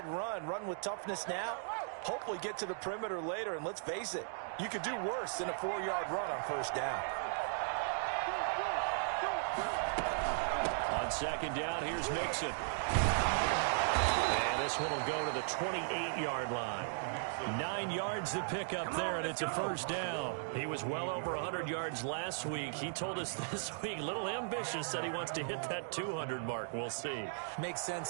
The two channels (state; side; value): silent; left; digital silence